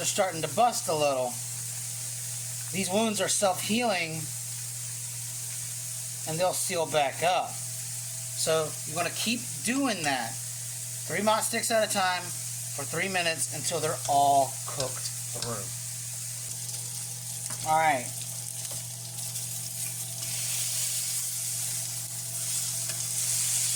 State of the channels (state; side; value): identical; both; correlation 1.00